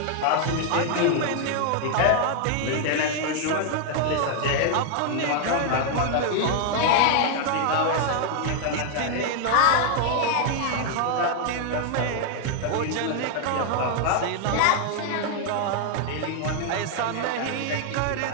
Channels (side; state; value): both; different; correlation 0.00